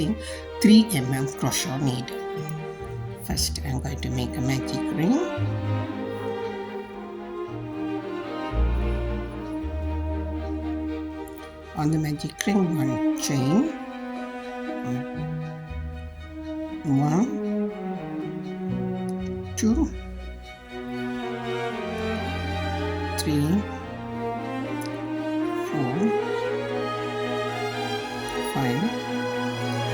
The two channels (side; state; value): both; identical; correlation 1.00